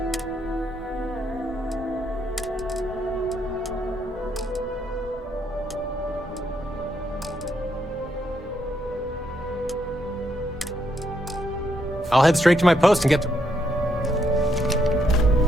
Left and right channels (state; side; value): normal; both; correlation 0.76